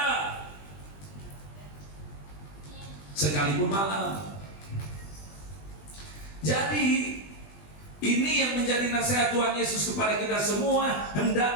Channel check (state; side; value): late; right; 20 ms